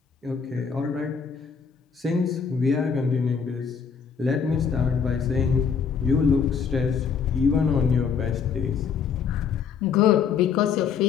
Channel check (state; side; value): quieter; right; 6.4 dB